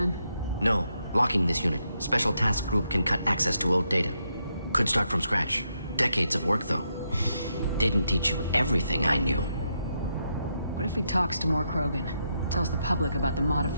No. Locking this unit. Special task group can cut access to old data. Could start from scratch. Decades of work, though. Didn't teach you everything I knew. What if he talks to more Krogan? Tells the public about the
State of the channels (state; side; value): inverted; both; correlation -0.80